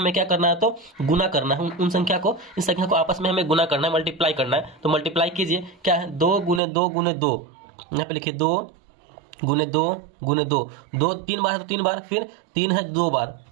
क्या करना है, तो गुना करना है। उन संख्या को, इस संख्या को आपस में हमें गुना करना है, मल्टीप्लाई करना है। तो मल्टीप्लाई कीजिए, क्या है, 2 गुने 2 गुने 2, यहाँ पे लिखिए 2 गुने 2 गुने 2, 2 3 बार है तो 3 बार, फिर 3 है 2 बार,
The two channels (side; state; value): left; drops out; at 6.6 s